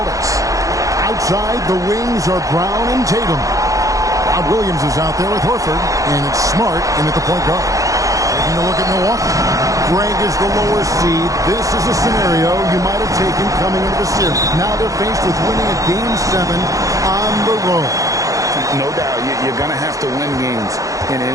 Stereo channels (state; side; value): late; left; 0.16 ms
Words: outside the wings are Brown and Tatum. Rob Williams is out there with Horford. And it's Smart in at the point guard. Taking a look at Milwaukee. Greg is the lower seed. This is a scenario you might have taken coming into the series. Now they're faced with winning a Game 7 on the road. No doubt, you're going to have to win games in